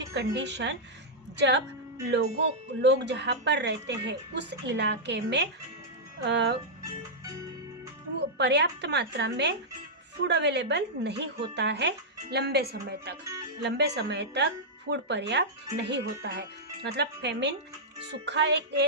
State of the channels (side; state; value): both; normal; correlation -0.09